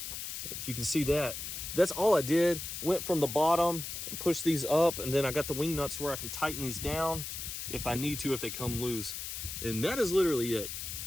If you can see that, that's all I did. Went from the bottom and pushed these up, and then I got the wing nuts to where I can tighten these down if I need to, if they come loose. And that is literally it.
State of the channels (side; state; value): left; noise; hiss, 6 dB below the sound